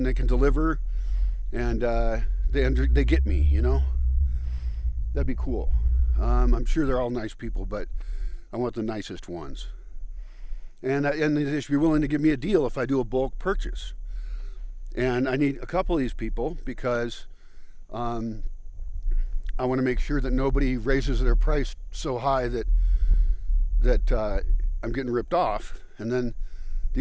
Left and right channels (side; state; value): both; identical; correlation 1.00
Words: they can deliver, and they get me, you know. That'd be cool. I'm sure they're all nice people, but I want the nicest ones. And they should be willing to give me a deal if I do a bulk purchase. And I need a couple of these people because I want to make sure that nobody raises their price so high that I'm getting ripped off. And then